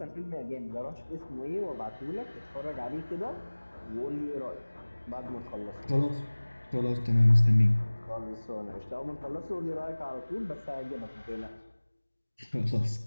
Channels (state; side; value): inverted; both; correlation -1.00